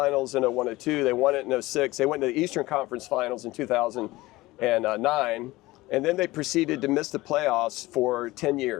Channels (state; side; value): quieter; right; 19.3 dB